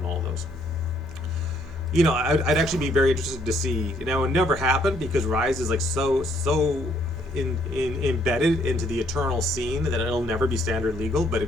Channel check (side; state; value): both; normal; correlation 0.68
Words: all of those. I'd actually be very interested to see. It would never happen because Rise is like so embedded into the eternal scene that it'll never be standard legal, but